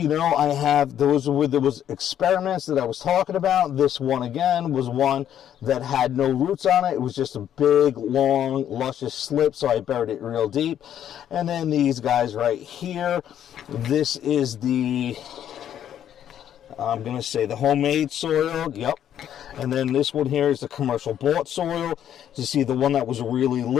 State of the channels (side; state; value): right; quieter; 10.2 dB